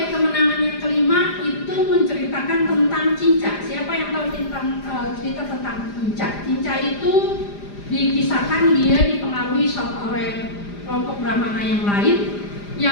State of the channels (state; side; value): late; right; 4.9 ms